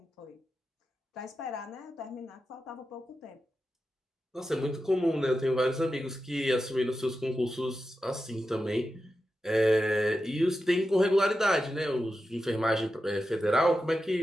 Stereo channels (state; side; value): normal; both; correlation 0.90